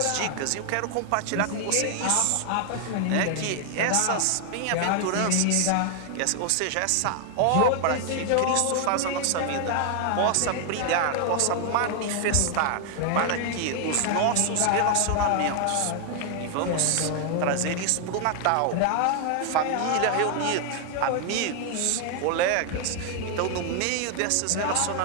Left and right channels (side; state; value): both; different; correlation 0.00